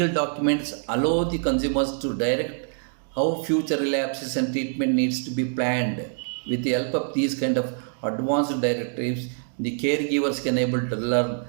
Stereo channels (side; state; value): left; silent; 59 dB below the other